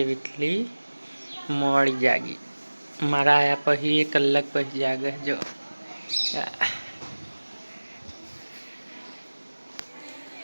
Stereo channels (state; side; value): inverted; both; correlation -1.00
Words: वीटली मोड़ी जागी। मारा आया पही 1 कलाक पही जागे जो